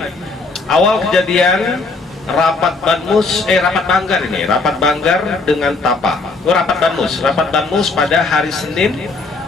Awal kejadian rapat banggar dengan TAPA. Rapat Banmus pada hari Senin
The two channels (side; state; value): right; quieter; 3.7 dB